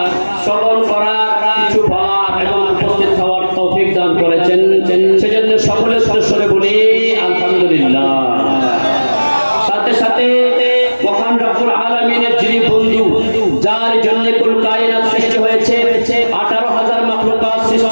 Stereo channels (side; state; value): both; inverted; correlation -1.00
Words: শ্রবণ করার কিছু বলার এবং উপস্থিত হওয়ার তৌফিক দান করেছেন সেজন্য সকলের সদস্যরে বলি আলহামদুলিল্লাহ সাথে সাথে মহান রব্বুল আলামিনের যিনি বন্ধু যার জন্য কুল কায়নাত সৃষ্টি হয়েছে 18000 মাখলুকাত